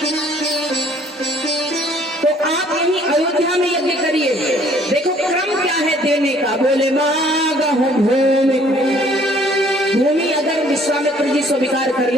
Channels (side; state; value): both; normal; correlation 0.59